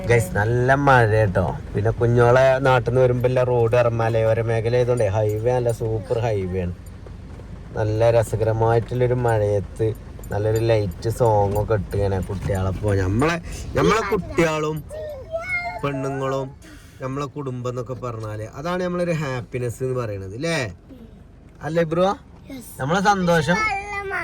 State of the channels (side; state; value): both; identical; correlation 1.00